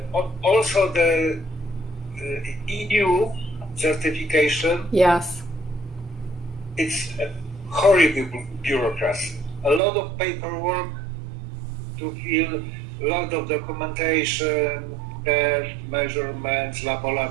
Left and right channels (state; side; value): drops out; left; at 9.8 s